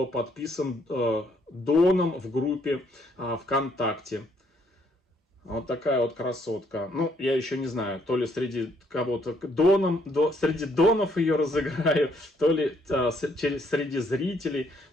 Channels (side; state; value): both; normal; correlation 0.69